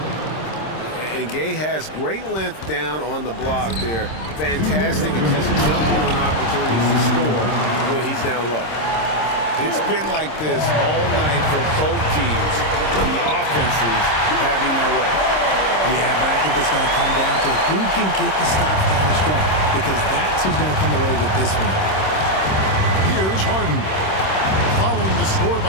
And Gay has great length down on the block there. Fantastic at just jumping on opportunities to score when he's down low. It's been like this all night for both teams. The offenses having their way. Yeah, but I think it's going to come down to who can get the stops down the stretch, because that's who's going to come away with this one. Here's Harden. Following the score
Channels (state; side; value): late; right; 26 ms